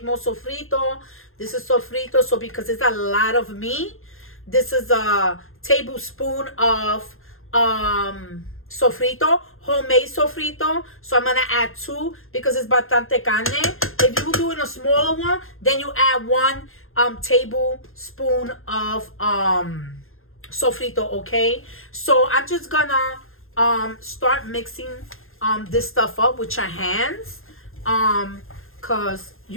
more sofrito. This is sofrito, so because it's a lot of meat, this is a tablespoon of sofrito, homemade sofrito. So I'm going to add 2 because it's bastante carne. If you're doing a smaller one, then you add 1 tablespoon of sofrito, okay? So I'm just going to start mixing this stuff up with your hands. Because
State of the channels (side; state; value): right; late; 0.60 ms